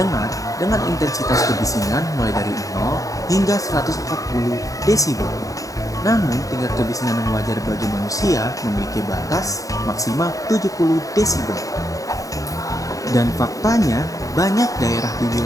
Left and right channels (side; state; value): right; late; 0.17 ms